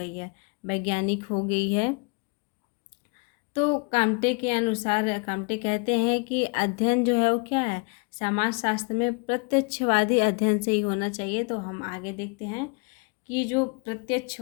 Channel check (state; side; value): quieter; right; 33.3 dB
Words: है, वैज्ञानिक हो गई है। तो काम्टे के अनुसार, काम्टे कहते हैं कि अध्ययन जो है वो क्या है, समाज शास्त्र में प्रत्यक्षवादी अध्ययन से ही होना चाहिए। तो हम आगे देखते हैं कि जो